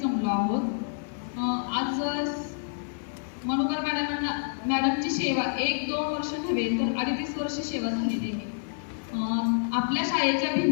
आहोत. आज मनुकर मॅडमची सेवा 1-2 वर्ष नव्हे तर 38 वर्ष सेवा झालेली आहे. आपल्या शाळेच्या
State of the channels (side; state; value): right; silent; 55 dB below the other